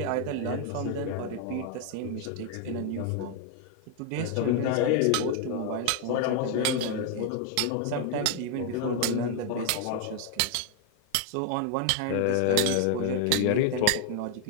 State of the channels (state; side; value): different; both; correlation 0.00